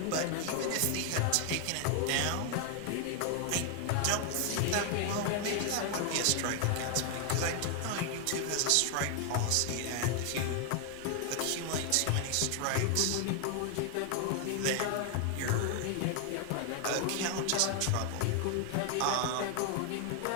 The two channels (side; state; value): both; different; correlation 0.00